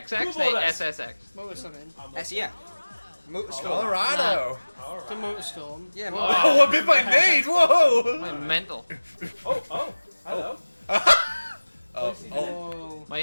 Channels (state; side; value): inverted; both; correlation -1.00